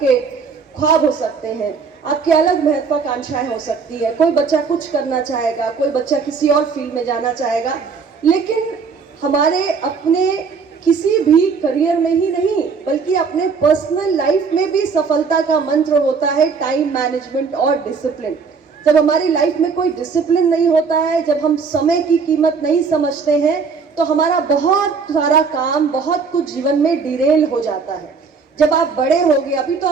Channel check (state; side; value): quieter; left; 5.3 dB